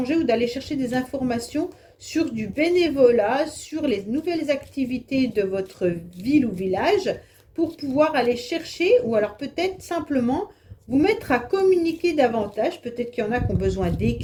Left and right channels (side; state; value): both; identical; correlation 1.00